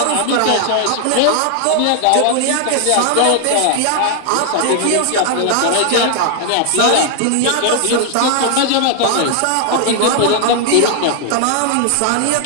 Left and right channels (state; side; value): different; both; correlation 0.00